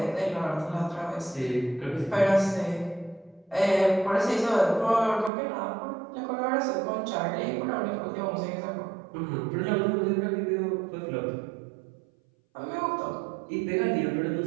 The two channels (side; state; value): left; drops out; at 5.3 s